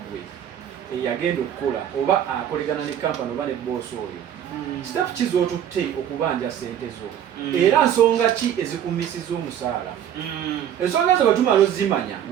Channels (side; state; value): left; quieter; 10.0 dB